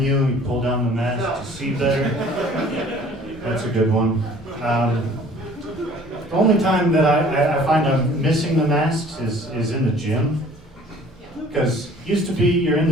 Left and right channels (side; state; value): both; normal; correlation 0.52